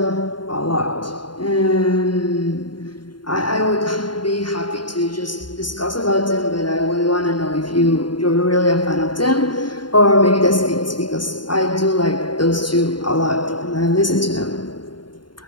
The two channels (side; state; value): right; late; 0.72 ms